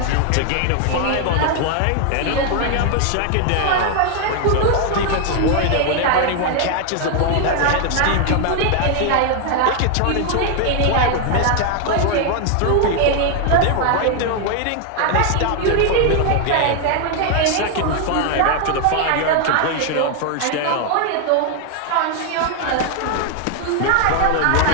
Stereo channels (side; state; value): both; different; correlation 0.00